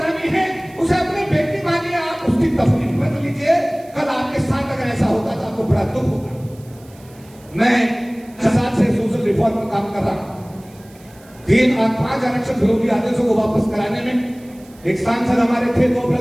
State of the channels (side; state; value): right; noise; hiss, 27 dB below the sound